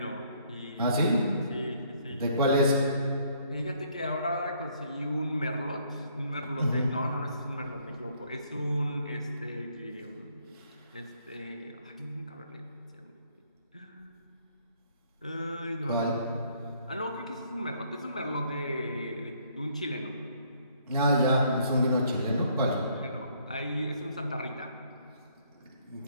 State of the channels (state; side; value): inverted; both; correlation -0.66